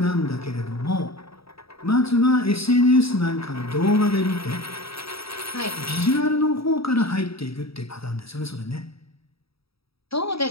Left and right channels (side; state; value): right; late; 0.77 ms